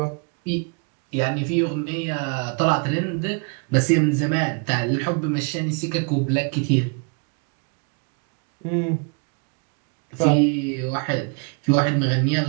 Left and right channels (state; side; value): quieter; left; 36.9 dB